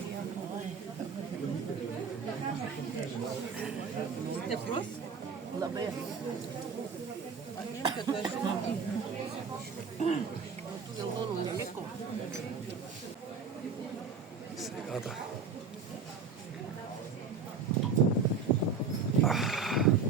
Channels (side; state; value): left; quieter; 5.3 dB